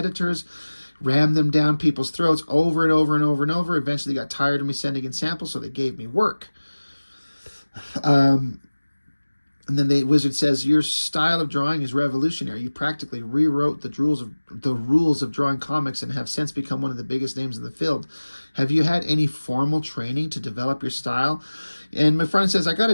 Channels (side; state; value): both; inverted; correlation -1.00